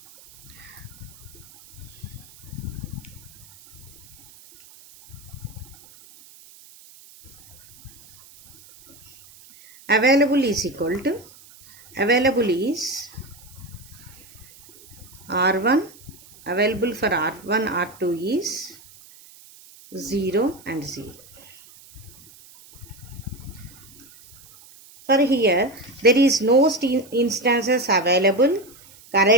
Available is equal to, available is R1, available for R1, R2 is 0 and 0. For here, there is no instances available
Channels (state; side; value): noise; right; hiss, 23 dB below the sound